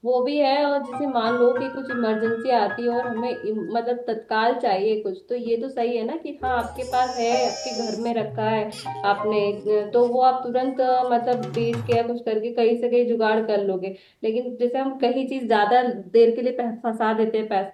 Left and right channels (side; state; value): both; identical; correlation 1.00